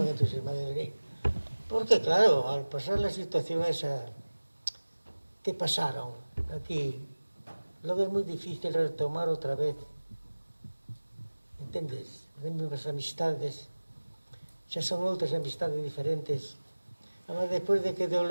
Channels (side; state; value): both; inverted; correlation -1.00